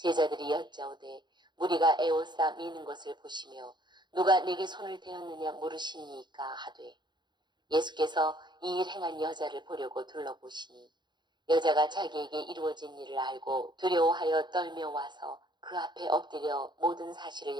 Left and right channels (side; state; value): left; late; 0.21 ms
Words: 여짜오되 무리가 애워싸 미는 것을 보시며 누가 내게 손을 대었느냐 물으시니까 하되, 예수께서 이 일 행한 여자를 보려고 둘러보시니 여자가 자기에게 이루어진 일을 알고 두려워하여 떨며 와서 그 앞에 엎드려 모든 사실을